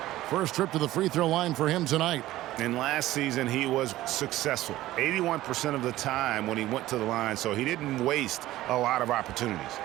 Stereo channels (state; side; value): quieter; left; 15.6 dB